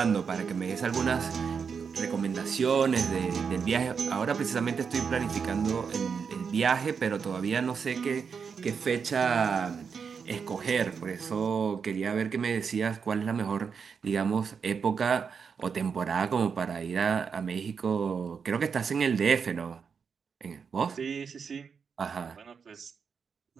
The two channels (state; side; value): quieter; left; 6.1 dB